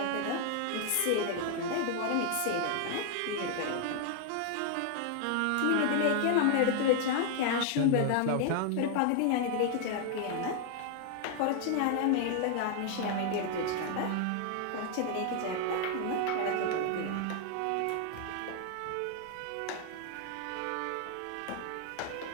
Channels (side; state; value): both; different; correlation 0.00